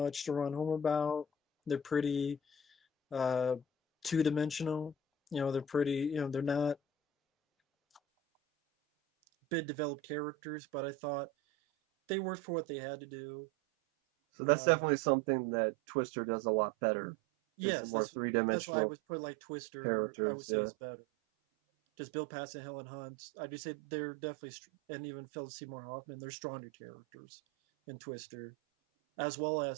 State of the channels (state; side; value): drops out; left; at 8.0 s